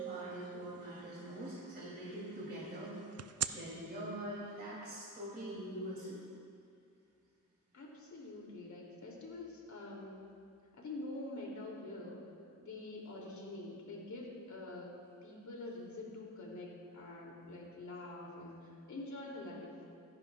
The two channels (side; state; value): both; normal; correlation 0.17